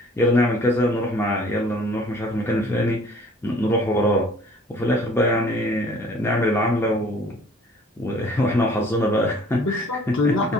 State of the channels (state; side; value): normal; both; correlation 0.53